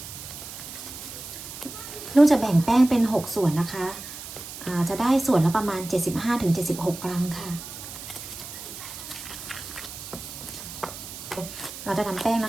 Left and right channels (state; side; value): noise; right; hiss, 11 dB below the sound